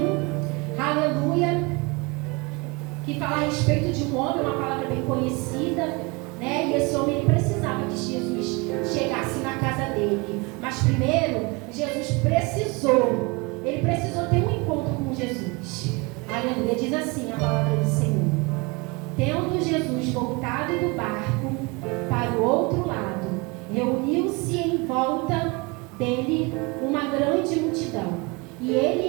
aleluia, que fala a respeito de um homem, uma palavra bem conhecida, né? E esse homem ele precisava que Jesus chegasse na casa dele. Mas primeiro, Jesus precisou ter um encontro com Jesus. Aleluia, diz assim a palavra do Senhor: tendo Jesus voltado do barco para o outro lado, reuniu-se em volta dele uma grande multidão, e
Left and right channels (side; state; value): left; quieter; 27.5 dB